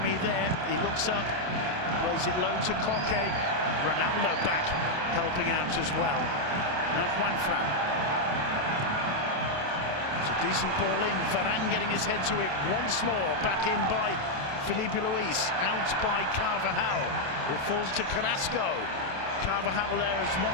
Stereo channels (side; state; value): left; late; 27 ms